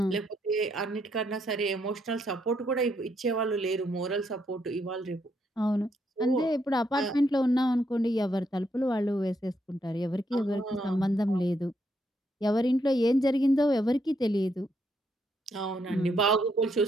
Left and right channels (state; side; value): normal; both; correlation 0.76